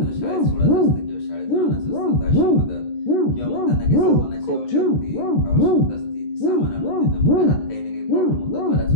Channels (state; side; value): late; right; 13 ms